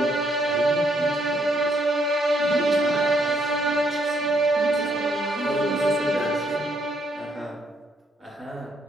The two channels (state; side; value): normal; both; correlation 0.72